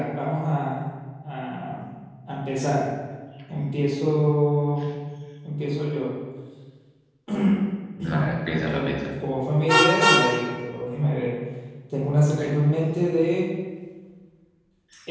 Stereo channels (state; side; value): identical; both; correlation 1.00